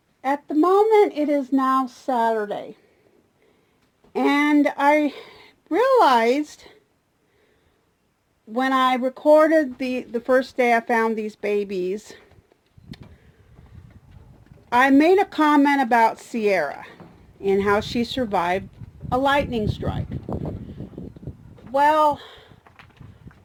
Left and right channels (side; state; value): both; identical; correlation 1.00